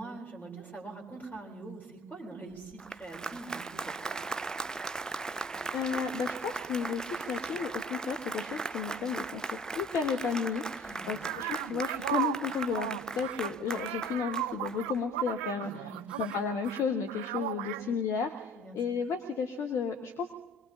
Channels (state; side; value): normal; both; correlation 0.47